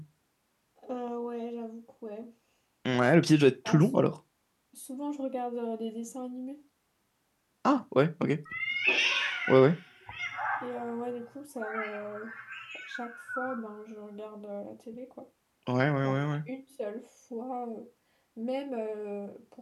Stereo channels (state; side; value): identical; both; correlation 1.00